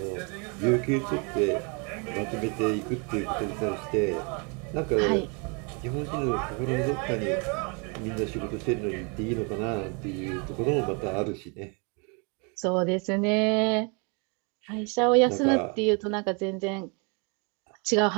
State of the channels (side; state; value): left; quieter; 33.8 dB